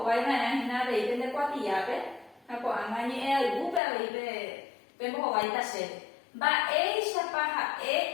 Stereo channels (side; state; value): right; drops out; at 3.8 s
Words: hína aveite ndekuatiápe ha ko'ág̃a ñe'ẽaygúpe aveite pembohovaita chéve mba'éichapa ha'e